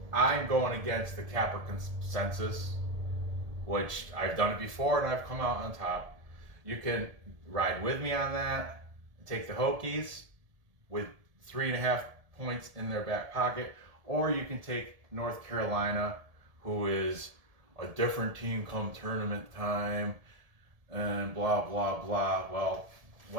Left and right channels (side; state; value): left; late; 1.7 ms